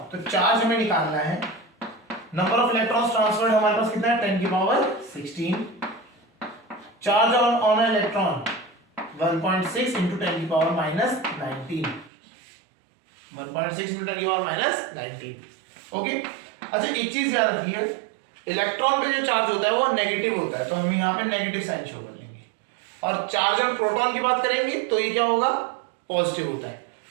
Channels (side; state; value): left; drops out; at 12.1 s